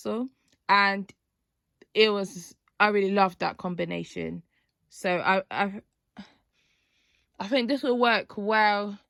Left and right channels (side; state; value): both; identical; correlation 1.00